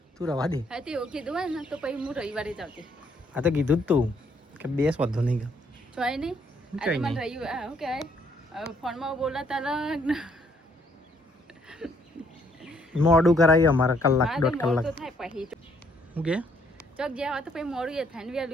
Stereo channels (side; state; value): both; normal; correlation 0.68